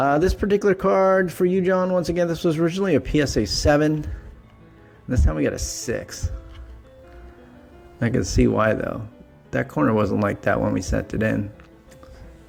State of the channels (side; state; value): both; identical; correlation 1.00